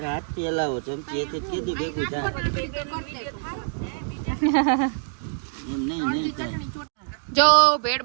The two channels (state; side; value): silent; left; digital silence